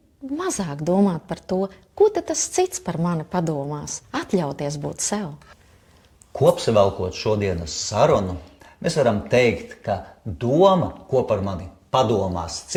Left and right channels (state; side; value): identical; both; correlation 1.00